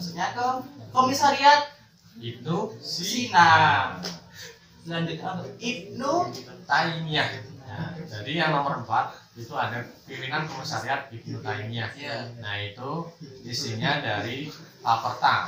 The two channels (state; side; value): identical; both; correlation 1.00